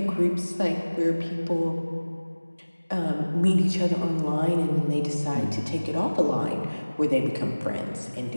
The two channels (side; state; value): both; inverted; correlation -1.00